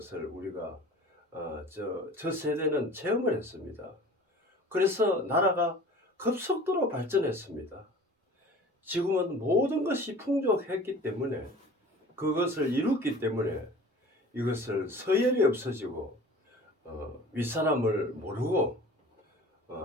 우리가 저 세대는 체험을 했습니다. 그래서 나라가 급속도로 발전했습니다. 지금은 모든 것이 풍족했기 때문에, 그것을 이뤘기 때문에 이것을 서열이 없어지고 윗사람을 모르고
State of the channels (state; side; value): normal; both; correlation 0.43